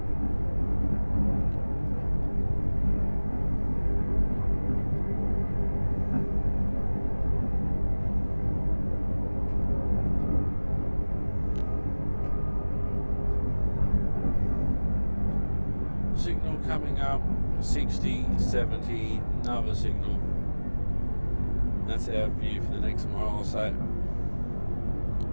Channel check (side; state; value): both; inverted; correlation -1.00